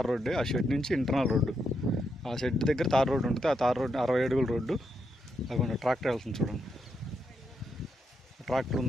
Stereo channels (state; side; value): normal; both; correlation 0.81